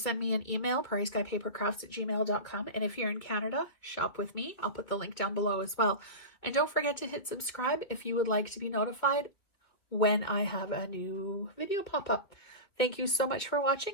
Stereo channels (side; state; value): right; late; 2.3 ms